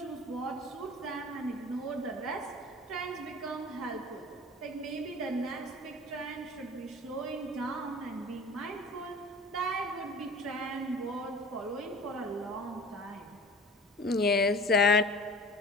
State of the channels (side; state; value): both; normal; correlation 0.41